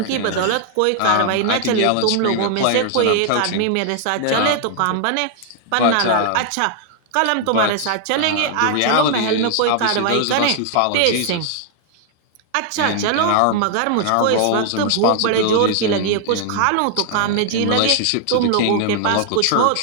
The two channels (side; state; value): both; different; correlation 0.00